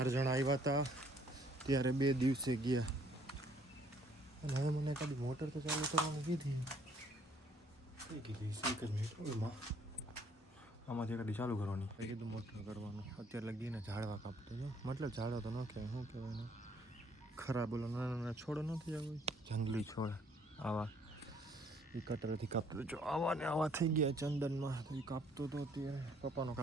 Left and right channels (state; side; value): normal; both; correlation 0.63